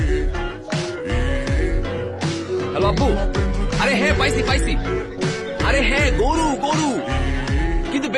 হ্যালো আব্বু। আরে হ্যাঁ পাইছি পাইছি। আরে হ্যাঁ গরু গরু, কিন্তু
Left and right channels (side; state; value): both; identical; correlation 1.00